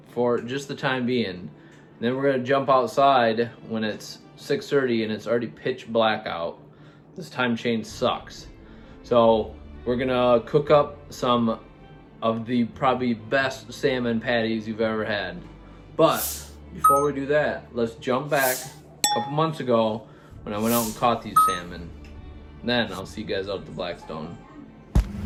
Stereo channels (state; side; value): identical; both; correlation 1.00